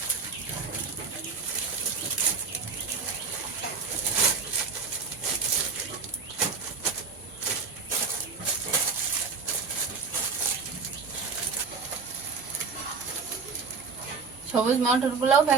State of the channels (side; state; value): left; quieter; 4.9 dB